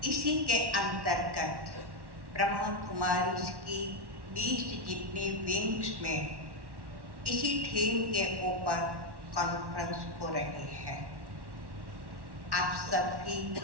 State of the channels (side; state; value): left; late; 1.1 ms